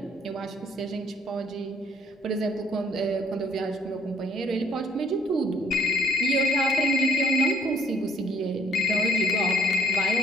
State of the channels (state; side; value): normal; both; correlation 0.64